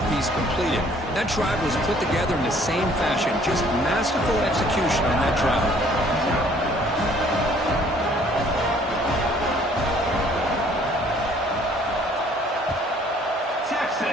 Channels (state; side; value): normal; both; correlation 0.58